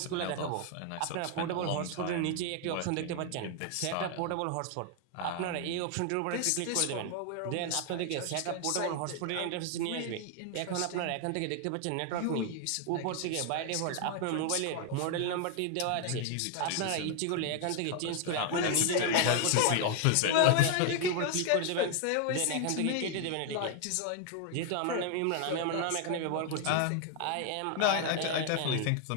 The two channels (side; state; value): both; different; correlation 0.00